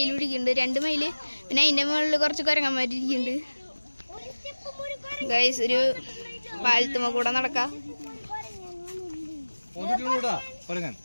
ഇരിക്കുന്നുണ്ട്. 2 മയില്, പിന്നെ അതിന്റെ മുകളിൽ കുറച്ച് കൊരങ്ങന്മാർ ഇരിക്കുന്നുണ്ട്. ഗൈസ് ഒരു പാലത്തുമ്മ കൂടെ നടക്കാം.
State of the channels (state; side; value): inverted; both; correlation -1.00